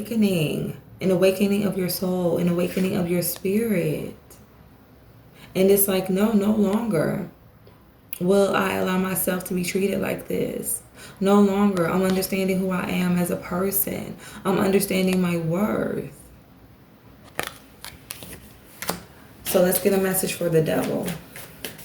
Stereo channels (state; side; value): identical; both; correlation 1.00